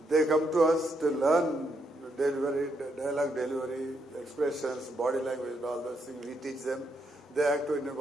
they come to us to learn dialogue delivery, expressions, body language, all those things. We teach them. They act in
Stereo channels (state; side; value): normal; both; correlation 0.77